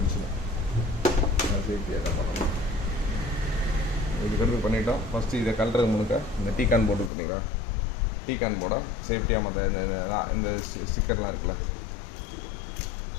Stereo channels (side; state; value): right; drops out; at 7.1 s